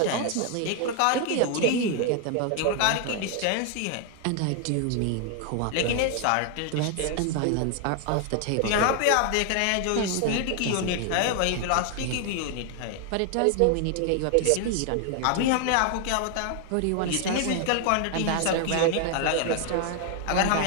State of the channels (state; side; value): different; both; correlation 0.00